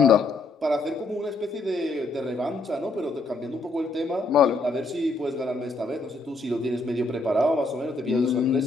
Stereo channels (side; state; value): right; quieter; 3.2 dB